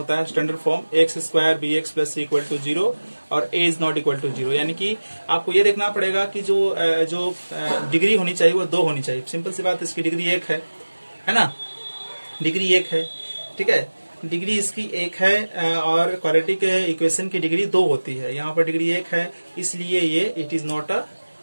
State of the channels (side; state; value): both; inverted; correlation -1.00